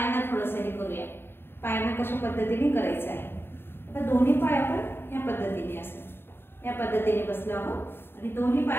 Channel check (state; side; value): late; right; 0.11 ms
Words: थोडंसं हे करूया, पायांना कशा पद्धतीने करायचं आहे। आता दोन्ही पाय आपण ह्या पद्धतीने असं या पद्धतीने बसलो आहोत आणि दोन्ही